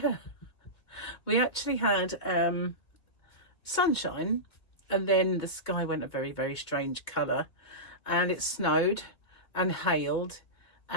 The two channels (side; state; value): right; late; 2.2 ms